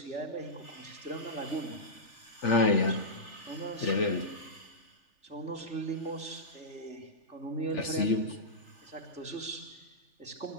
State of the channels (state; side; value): late; right; 3.4 ms